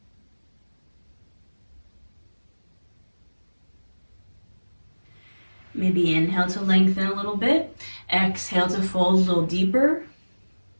Maybe inhale to lengthen a little bit. Exhale to fold a little deeper.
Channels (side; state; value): both; inverted; correlation -1.00